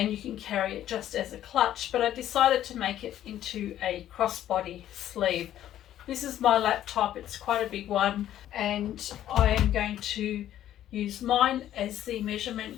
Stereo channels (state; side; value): quieter; right; 12.0 dB